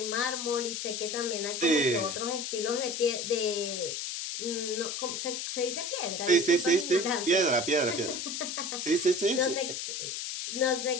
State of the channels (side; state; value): left; noise; hiss, 4 dB below the sound